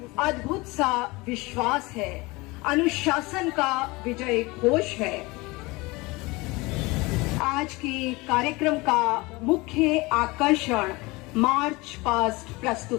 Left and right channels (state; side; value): quieter; right; 23.4 dB